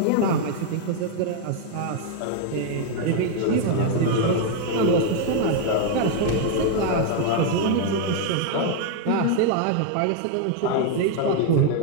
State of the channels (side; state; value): both; different; correlation 0.00